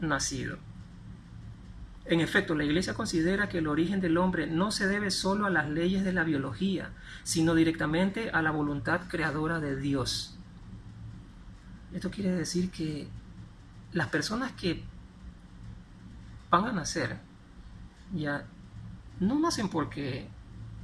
nacido. En efecto, la Iglesia considera que el origen del hombre no se debe solo a las leyes de la biología, sino directamente a la voluntad creadora de Dios. Esto quiere decir que las personas que van a nacer ya no nacen porque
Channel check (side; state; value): both; identical; correlation 1.00